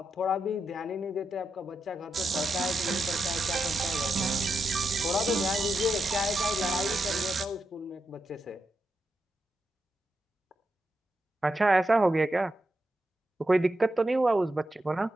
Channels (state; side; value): normal; both; correlation 0.85